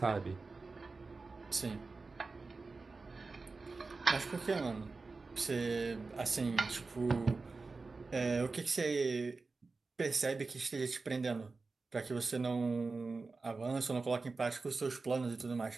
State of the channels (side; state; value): left; quieter; 3.9 dB